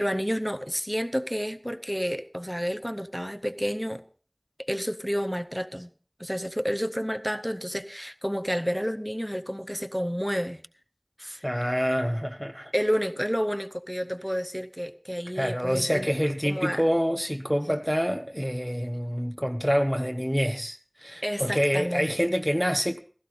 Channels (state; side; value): identical; both; correlation 1.00